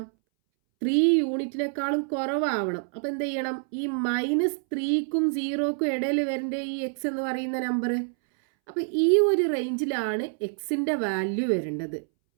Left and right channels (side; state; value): left; silent; 60 dB below the other